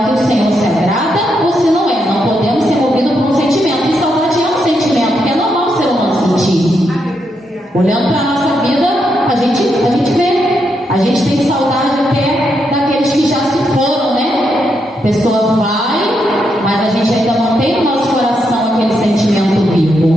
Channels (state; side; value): normal; both; correlation 0.81